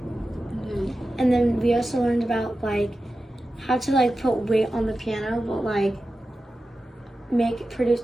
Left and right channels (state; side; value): normal; both; correlation 0.93